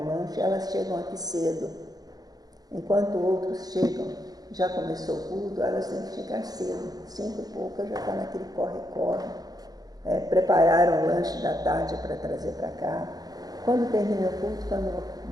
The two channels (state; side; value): late; left; 0.19 ms